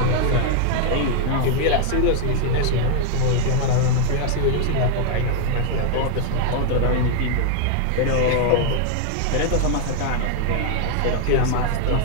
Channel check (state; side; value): different; both; correlation 0.00